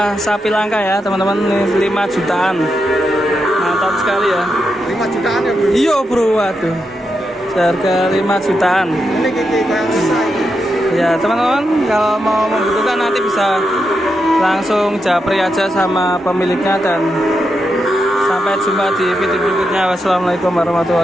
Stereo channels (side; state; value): both; normal; correlation 0.85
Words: Sapi langka ya teman-teman, 5 jutaan. Mantap sekali ya. 5 jutaan ya bro? Iya bro, waduh. Harga 5 jutaan. Ini kayak susah. Ya teman-teman, kalau mau membutuhkan nanti bisa langsung japri aja sama pemiliknya, dan sampai jumpa di video berikutnya. Wassalamualaikum